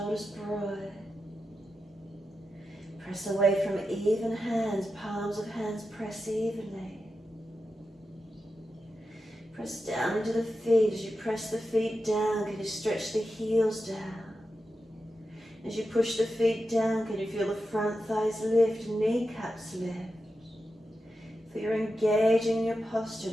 broad. Press away from even hands, palms of hands press evenly. Press down into the feet. As you press the feet down, can you stretch the heels down? As you push the feet down, can you feel the front thighs lift, kneecaps lift? Feel you're engaging your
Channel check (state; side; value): normal; both; correlation 0.90